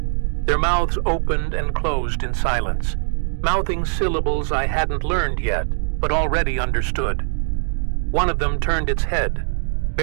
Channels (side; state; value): left; silent; digital silence